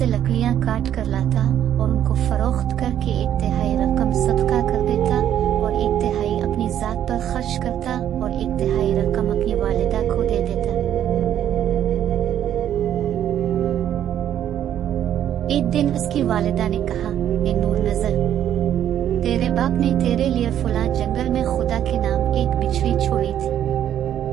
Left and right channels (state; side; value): quieter; left; 10.5 dB